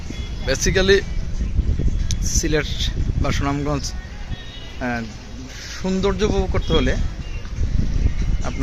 বেসিক্যালি সিলেট বা সুনামগঞ্জ সৌন্দর্য উপভোগ করতে হলে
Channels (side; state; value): both; identical; correlation 1.00